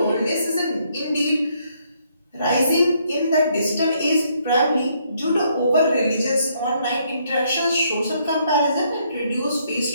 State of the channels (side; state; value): both; inverted; correlation -0.71